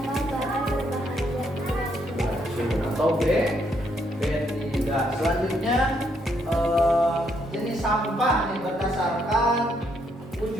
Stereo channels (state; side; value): normal; both; correlation 0.73